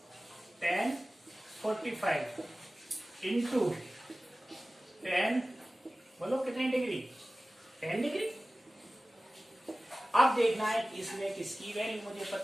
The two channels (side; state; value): both; normal; correlation 0.97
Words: 10 45 into 10, बोलो कितनी डिग्री 10 डिग्री। अब देखना है कि इसमें किसकी वैल्यू मुझे